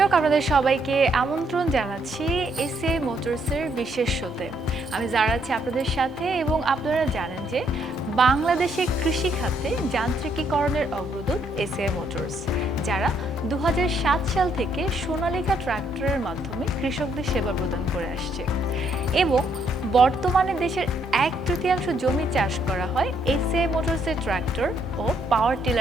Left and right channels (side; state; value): both; normal; correlation 0.72